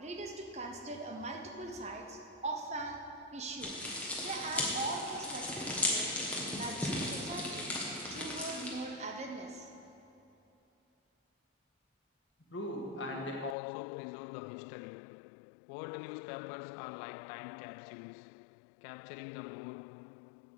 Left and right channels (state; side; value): drops out; right; at 13.6 s